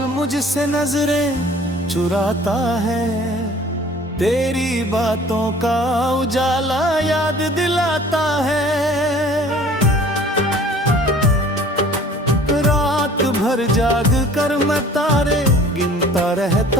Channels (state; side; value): normal; both; correlation 0.50